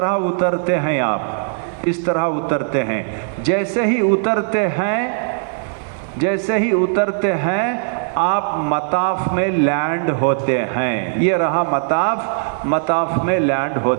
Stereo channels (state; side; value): silent; left; digital silence